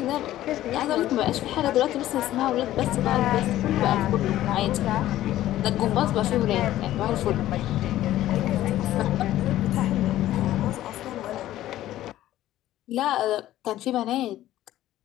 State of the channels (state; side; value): quieter; right; 14.0 dB